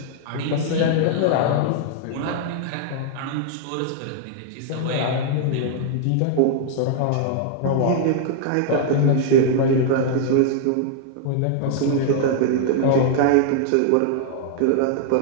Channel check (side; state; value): both; different; correlation 0.00